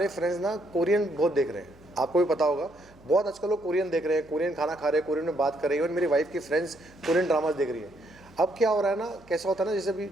फ्रेंड्स ना कोरियन बहुत देख रहे हैं। आपको भी पता होगा, बहुत आजकल लोग कोरियन देख रहे हैं, कोरियन खाना खा रहे हैं, कोरियन में बात कर रहे हैं। और मेरी वाइफ की फ्रेंड्स कोरियन ड्रामाज देख रही है। अब क्या हो रहा है ना, कैसा होता है ना,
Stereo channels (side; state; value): right; noise; hum, 27 dB below the sound